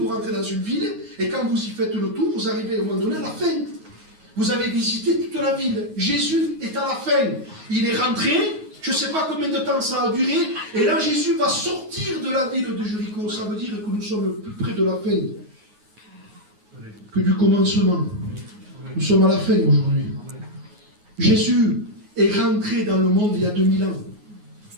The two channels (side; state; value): left; late; 9.5 ms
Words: rentrez dans une ville et quand vous y faites le tour, vous arrivez au moment donné à la fin. Vous avez visité toute la ville. Jésus est à la fin. Il est rentré, je ne sais pas combien de temps ça a duré, et là Jésus va sortir de la ville de Jéricho. Ça veut dire que nous sommes plus près de la fin que du commencement. Nous sommes à la fin aujourd'hui. Jésus est rentré dans le monde il y a 2000 ans.